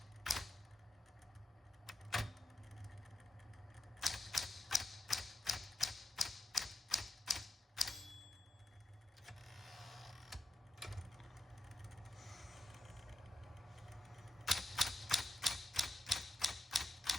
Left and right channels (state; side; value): normal; both; correlation 0.84